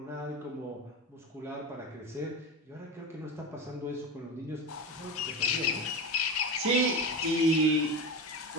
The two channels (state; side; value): normal; both; correlation 0.23